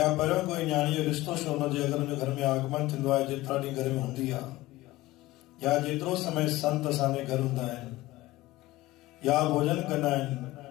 पर कोई न्याणी जो रिश्तो छो न जे अगर उन घर में आगमन थींदो आहे जेतिरा ॾींहं घर में हूंदी आहे या जेतिरो समय संत असांजे घर हूंदा आहिनि या भोजन कंदा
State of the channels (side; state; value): right; quieter; 18.2 dB